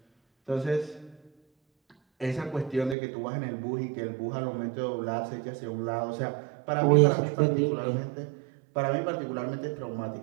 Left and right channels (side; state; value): left; drops out; at 3.0 s